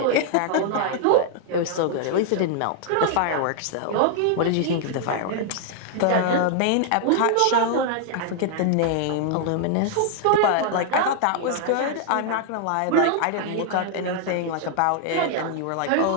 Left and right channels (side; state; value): both; different; correlation 0.00